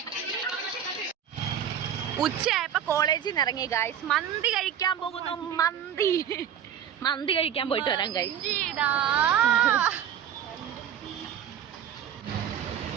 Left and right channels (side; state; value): left; quieter; 9.3 dB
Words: ഉച്ചയായപ്പോ കോളേജിൽ നിന്ന് ഇറങ്ങി ഗായ്സ്. മന്തി കഴിക്കാൻ പോകുന്നു. മന്തി കഴിക്കാൻ പോയിട്ട് വരാം ഗായ്സ്.